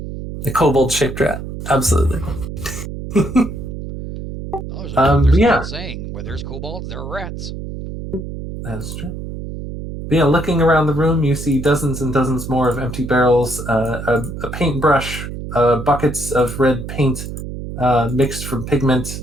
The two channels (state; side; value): noise; right; hum, 8 dB below the sound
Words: kobold-shaped rat. Absolutely. Oh, there's an yeah. old saying, where there's kobolds, there are rats. That is true. But yeah, looking around the room, you see dozens and dozens more of empty barrels, a paintbrush, buckets of red paint mixed from pigment.